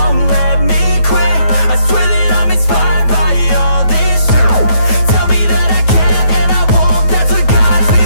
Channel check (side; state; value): right; late; 9.2 ms